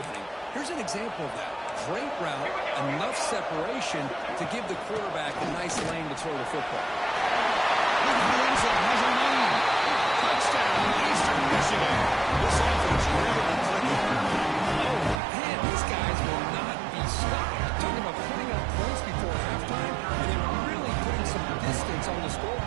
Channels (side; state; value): left; drops out; at 15.2 s